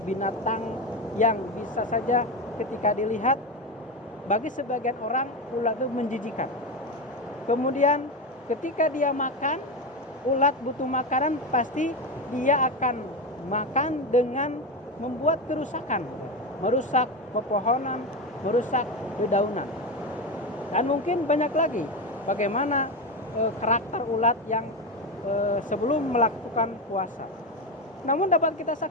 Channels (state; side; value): normal; both; correlation 0.16